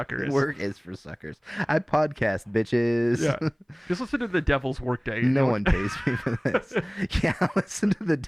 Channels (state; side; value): identical; both; correlation 1.00